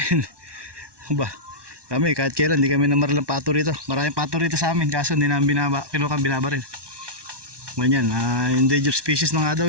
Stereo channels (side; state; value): left; late; 1.2 ms